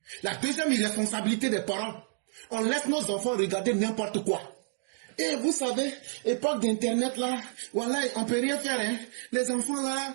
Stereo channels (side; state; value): left; silent; digital silence